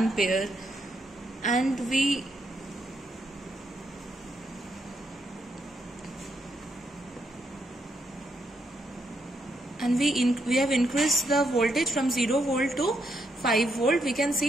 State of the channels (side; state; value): both; normal; correlation 0.78